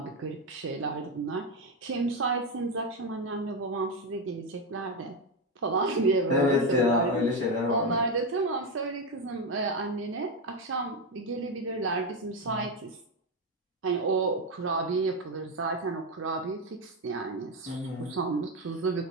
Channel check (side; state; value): both; normal; correlation 0.10